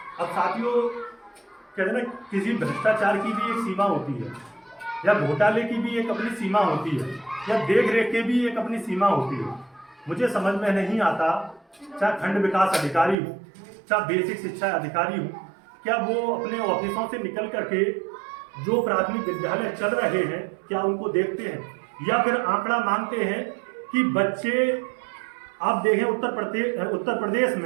अब साथियों, कहते हैं ना, किसी भ्रष्टाचार की भी एक सीमा होती है या घोटाले की भी एक अपनी सीमा होती है या देख रेख की भी एक अपनी सीमा होती है। मुझे समझ में नहीं आता, चाहे खंड विकास अधिकारी हो चाहे बेसिक शिक्षा अधिकारी हो, क्या वो अपने ऑफिसों से निकल करके जो प्राथमिक विद्यालय चल रहे हैं क्या उनको देखते हैं या फिर आंकड़ा मांगते हैं कि बच्चे, आप देखें उत्तर प्रदेश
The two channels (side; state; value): left; drops out; at 13.2 s